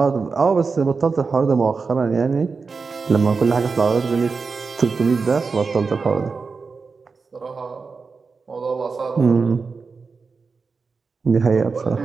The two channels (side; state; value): left; quieter; 4.7 dB